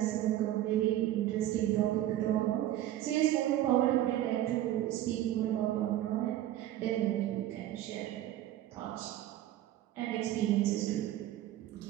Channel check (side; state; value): left; quieter; 13.3 dB